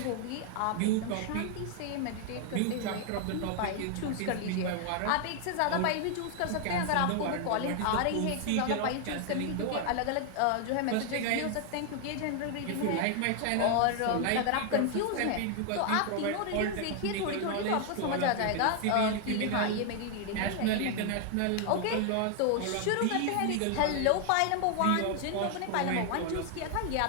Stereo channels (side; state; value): both; different; correlation 0.00